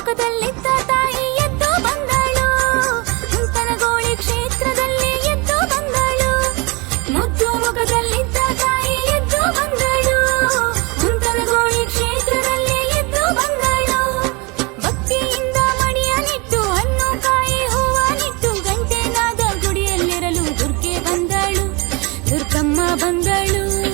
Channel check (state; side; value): quieter; left; 28.0 dB